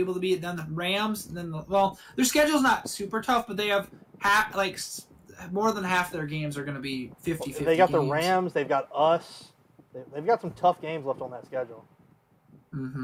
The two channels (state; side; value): identical; both; correlation 1.00